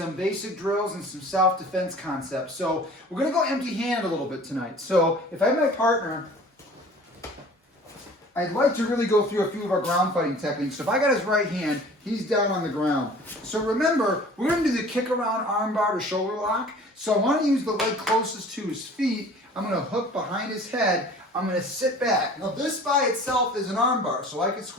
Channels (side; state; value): both; normal; correlation 0.46